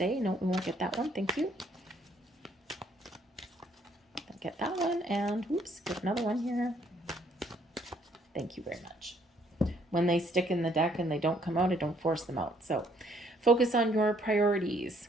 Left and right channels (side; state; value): both; normal; correlation 0.66